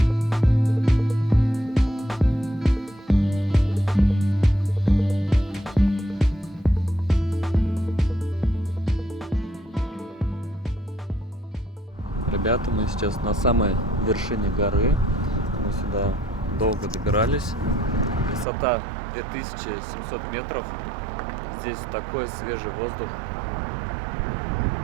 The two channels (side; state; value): left; drops out; at 18.4 s